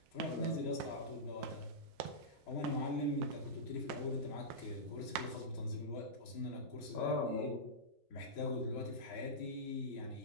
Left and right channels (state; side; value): normal; both; correlation -0.15